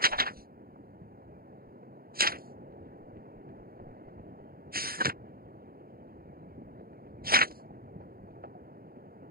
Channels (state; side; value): late; left; 0.43 ms